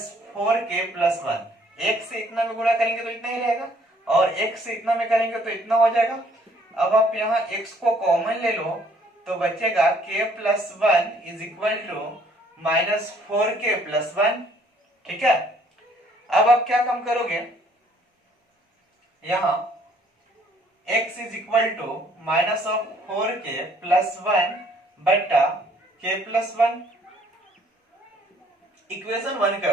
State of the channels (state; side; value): normal; both; correlation 0.62